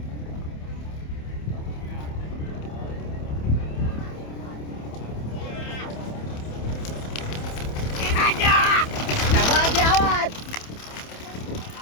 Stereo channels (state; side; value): late; right; 27 ms